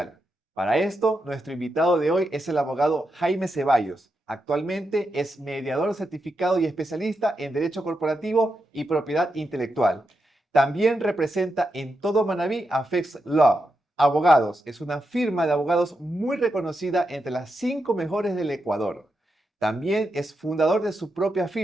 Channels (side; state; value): both; normal; correlation 0.86